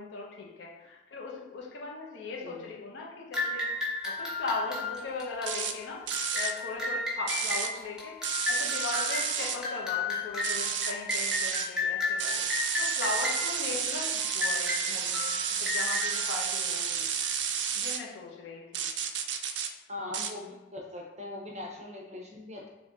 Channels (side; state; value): both; normal; correlation 0.06